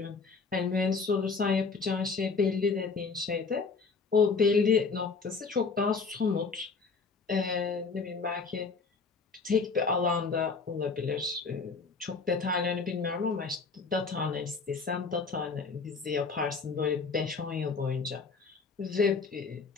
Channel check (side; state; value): right; quieter; 4.7 dB